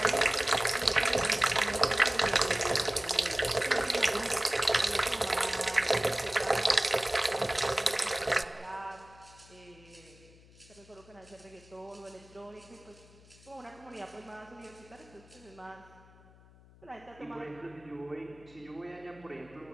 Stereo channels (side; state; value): left; noise; hum, 24 dB below the sound